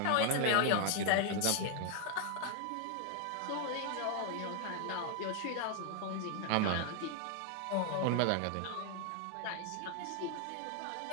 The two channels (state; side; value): different; both; correlation 0.00